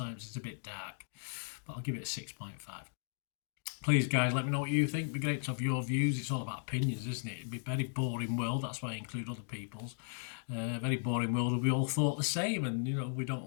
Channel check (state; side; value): silent; right; digital silence